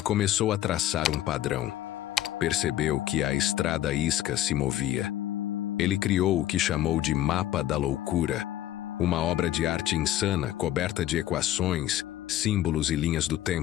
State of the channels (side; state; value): right; quieter; 13.2 dB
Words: a traçar um padrão. Percebeu que a estrada isca se movia. Ele criou o que chamou de Mapa da Loucura, uma obra de arte insana coberta de equações, símbolos e linhas do